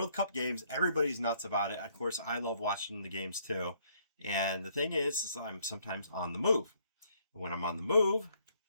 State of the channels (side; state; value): both; inverted; correlation -0.67